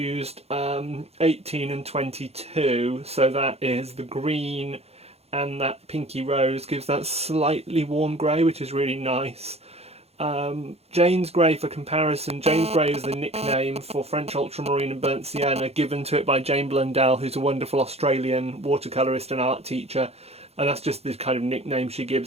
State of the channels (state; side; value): late; left; 0.30 ms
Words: 18 and 22, so that is the green and that pinky rose gives that slightly warm grey, which is really nice. Jane's Grey, for comparison, Jane's Grey is the nickname for French Ultramarine and Burnt Sienna, given to it by Jane Blundell, who's a wonderful Australian watercolourist and art teacher, and that's just the kind of nickname she